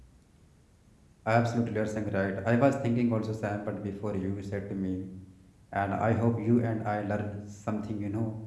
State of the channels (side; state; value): both; identical; correlation 1.00